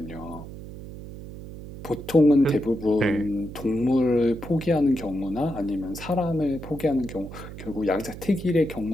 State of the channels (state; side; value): noise; right; hum, 12 dB below the sound